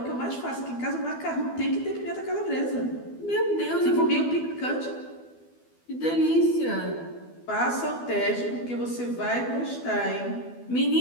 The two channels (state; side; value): late; right; 12 ms